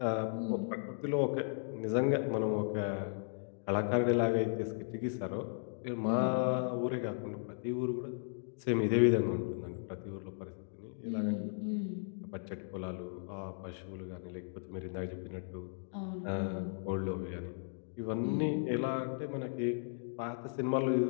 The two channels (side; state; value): right; silent; digital silence